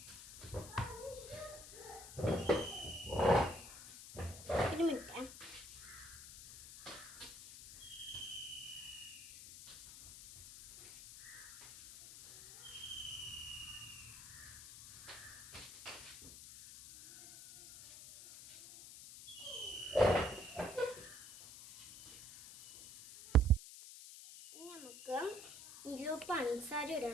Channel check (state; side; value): noise; left; hiss, 14 dB below the sound